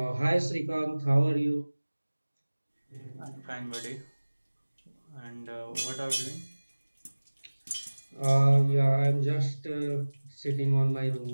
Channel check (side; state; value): both; inverted; correlation -1.00